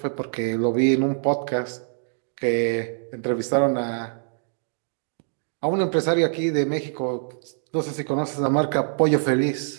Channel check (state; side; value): silent; left; digital silence